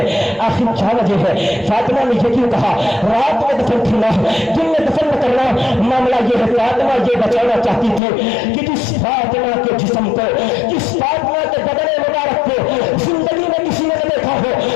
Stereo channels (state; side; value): drops out; right; at 8.0 s